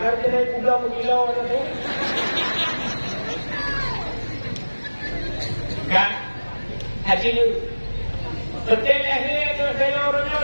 Kena pulau mengilau tu. Kan? Haji ni, betul lahir tu saya orangnya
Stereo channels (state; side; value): inverted; both; correlation -1.00